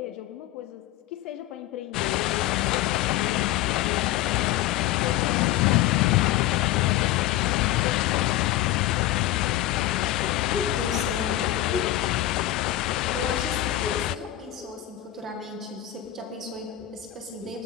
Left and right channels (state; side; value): quieter; right; 14.0 dB